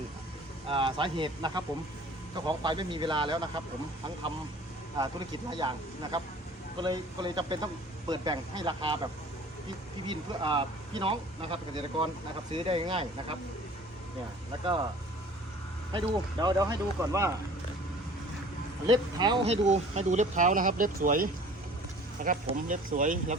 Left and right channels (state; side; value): normal; both; correlation 0.48